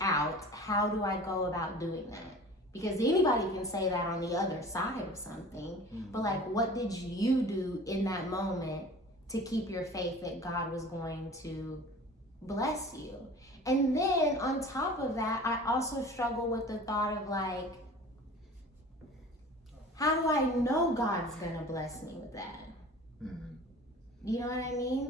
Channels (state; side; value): normal; both; correlation 0.41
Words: out, how do I go about doing that? Because anybody can say that on the other side of something, but like, what did you do in that moment to keep your faith that God was going to bless you? And then on top of that, I also struggle with the thought of like, how do I know God's gonna bless me with that? You know what I